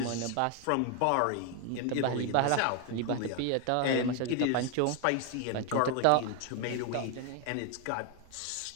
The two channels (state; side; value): different; both; correlation 0.01